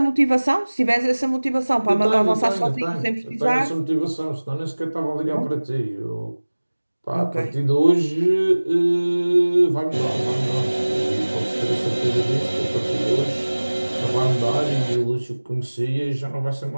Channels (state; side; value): inverted; both; correlation -1.00